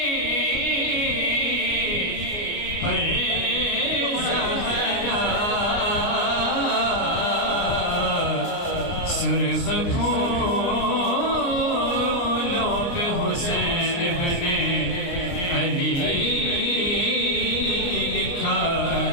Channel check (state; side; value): late; right; 29 ms